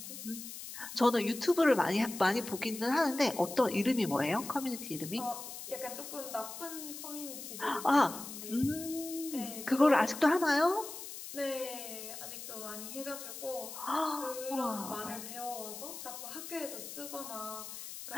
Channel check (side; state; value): left; noise; hiss, 10 dB below the sound